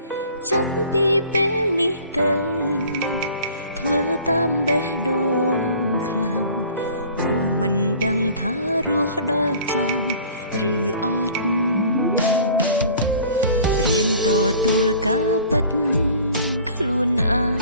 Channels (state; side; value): inverted; both; correlation -0.49